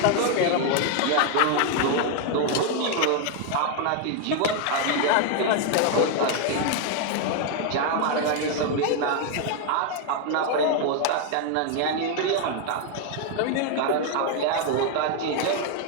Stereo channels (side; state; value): both; different; correlation 0.00